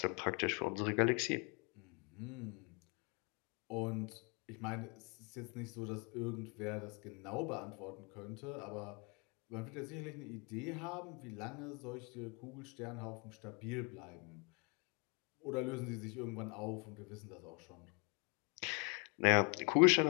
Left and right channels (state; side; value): quieter; right; 33.1 dB